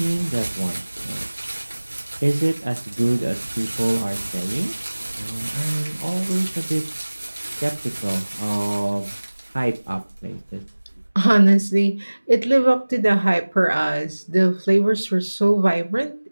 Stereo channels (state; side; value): inverted; both; correlation -1.00